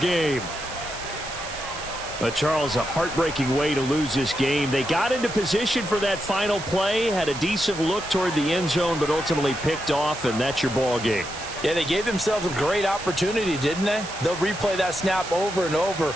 But Charles, a heartbreaking way to lose this game. They got into position for that final play, had a decent look toward the end zone, but ultimately picked off, and that's your ball game. Yeah, they gave themselves a great opportunity, didn't they? They'll replay that snap over and over,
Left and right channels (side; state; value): right; noise; hiss, 11 dB below the sound